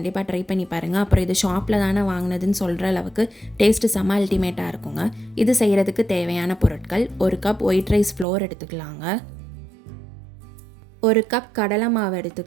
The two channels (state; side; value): drops out; left; at 8.2 s